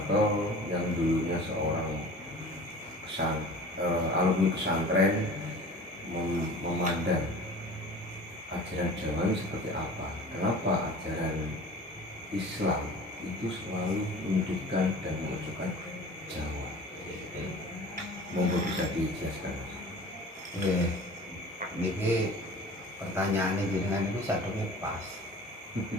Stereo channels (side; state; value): both; normal; correlation 0.41